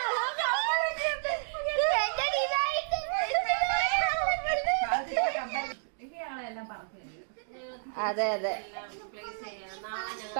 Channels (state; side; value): silent; left; digital silence